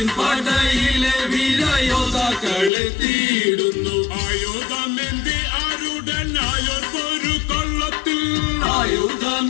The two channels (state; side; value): drops out; right; at 2.7 s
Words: പടയിലെ വീരയോദ്ധാക്കളെ തേടുന്നു. ആയുധമേന്തി ആരുടനായോർക്കൊരു കൊള്ളത്തിൽ.